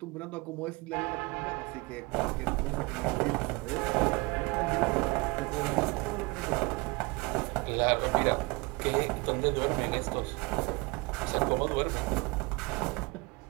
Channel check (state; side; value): quieter; left; 26.1 dB